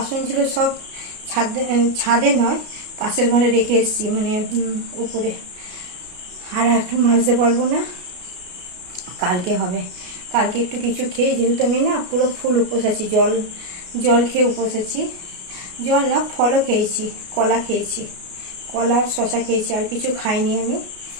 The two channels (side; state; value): left; late; 33 ms